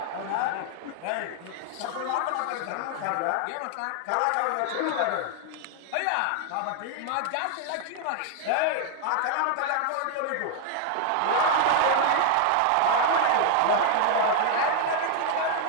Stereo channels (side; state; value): both; different; correlation 0.00